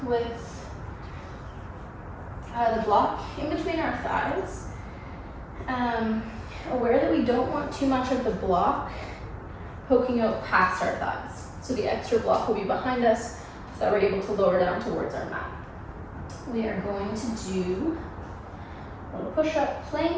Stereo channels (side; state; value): both; identical; correlation 1.00